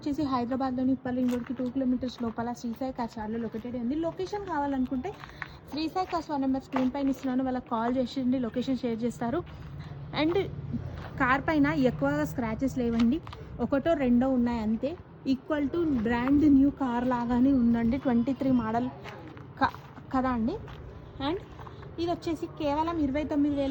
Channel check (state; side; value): identical; both; correlation 1.00